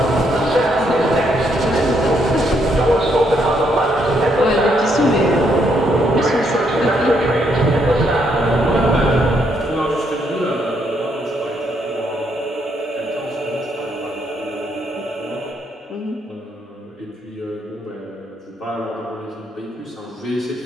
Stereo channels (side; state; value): both; normal; correlation 0.74